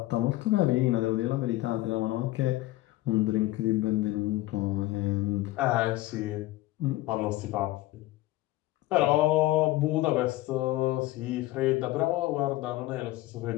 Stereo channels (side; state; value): right; quieter; 17.5 dB